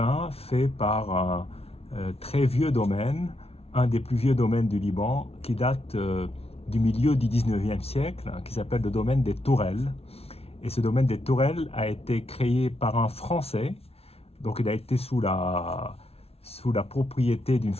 fait par un très vieux domaine, un des plus vieux domaines du Liban, qui date du milieu du 19e siècle, hein, qui s'appelle le domaine des Tourelles. Et ce domaine des Tourelles a été créé par un Français, donc il a été sous la propriété d'une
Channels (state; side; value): late; right; 0.29 ms